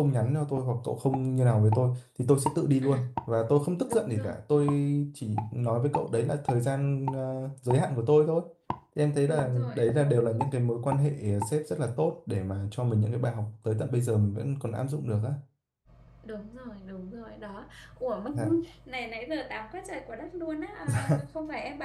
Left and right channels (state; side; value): identical; both; correlation 1.00